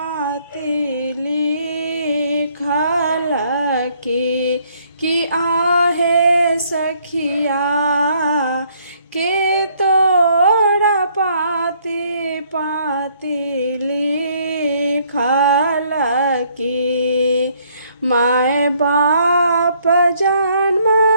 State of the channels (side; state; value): both; inverted; correlation -0.66